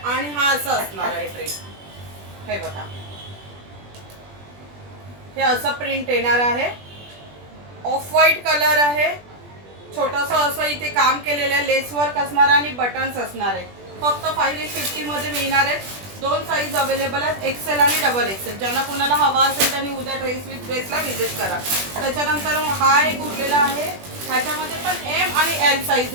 आणि हा असं असणार आहे ड्रेस. हे बघा, हे असं प्रिंट येणार आहे. ऑफ व्हाईट कलर आहे. छोटंसं असं इथे काम केलेलं आहे. लेस वर्क असणार आणि बटन्स असणार आहे. फक्त 550 मध्ये मिळणार आहेत. 2 साईज अवेलेबल आहेत, एक्सेल आणि डबल एक्सेल. ज्यांना कोणाला हवा असेल त्यांनी उद्या ड्रेस विथ ग्रेसला व्हिजिट करा. त्याच्यानंतर हा एक उरलेला आहे. ह्याच्यामध्ये पण एम आणि एल साईज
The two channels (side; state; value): left; late; 20 ms